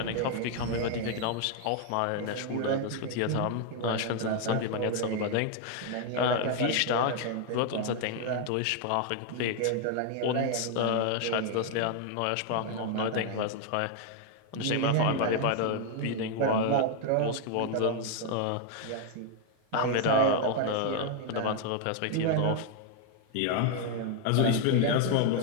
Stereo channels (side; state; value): both; different; correlation 0.00